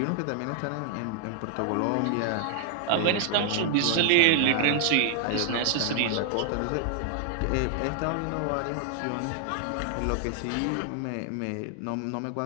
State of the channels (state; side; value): different; both; correlation 0.00